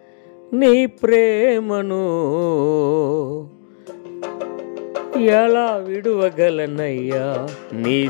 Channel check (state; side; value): silent; right; digital silence